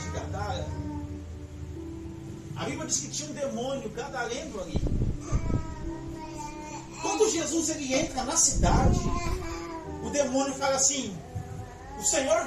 de Gadara? A Bíblia diz que tinha um demônio gadareno ali. Quando Jesus ele entra na cidade, o demônio fala assim: o Senhor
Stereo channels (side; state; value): both; identical; correlation 1.00